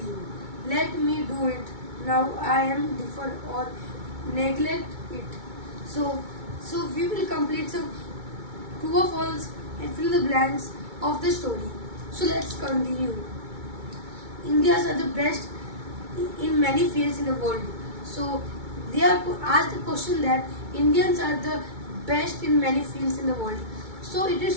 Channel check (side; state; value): left; late; 2.2 ms